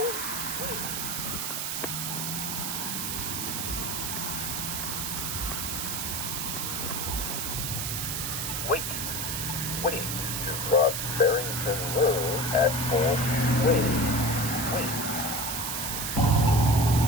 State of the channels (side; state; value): right; noise; hiss, 2 dB below the sound